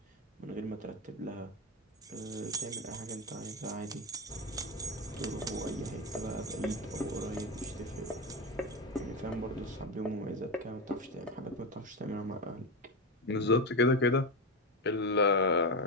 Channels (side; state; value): both; normal; correlation 0.15